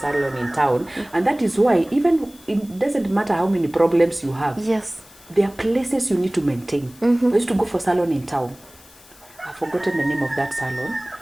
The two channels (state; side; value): noise; left; hiss, 24 dB below the sound